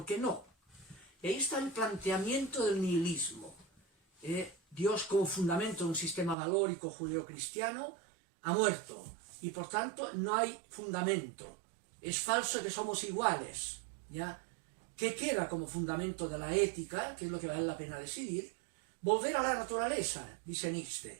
qué no? Y ahí está el planteamiento del nihilismo. Dios, como fundamento de un sistema valórico judeocristiano, ha muerto. Y por tanto no hay fundamento. Es falso que somos iguales, ¿ya? ¿Qué queda como fundamento de la ética? Que es lo que vale la pena decidir. Volver a la naturaleza, dice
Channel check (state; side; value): drops out; left; at 6.4 s